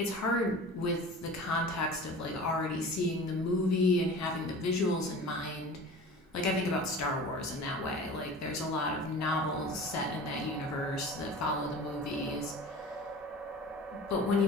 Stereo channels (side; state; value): both; normal; correlation 0.38